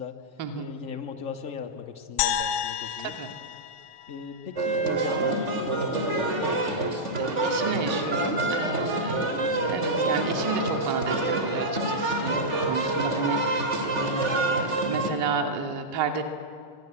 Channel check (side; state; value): left; late; 3.4 ms